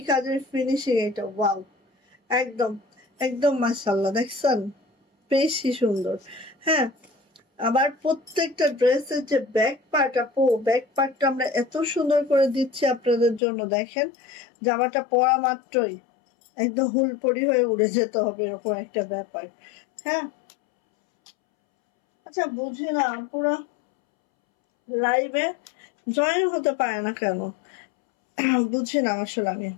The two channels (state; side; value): drops out; right; at 13.4 s